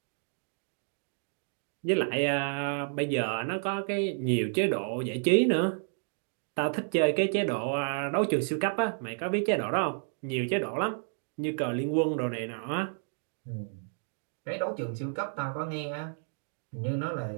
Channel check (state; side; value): silent; left; 57 dB below the other